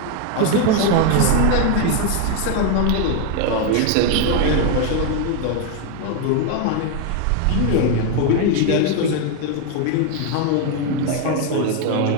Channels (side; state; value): both; different; correlation 0.01